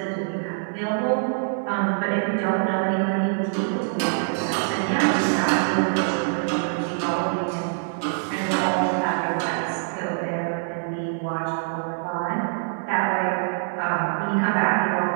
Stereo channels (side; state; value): left; silent; 61 dB below the other